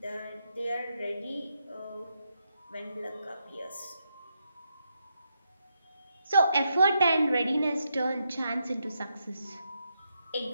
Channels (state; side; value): inverted; both; correlation -0.81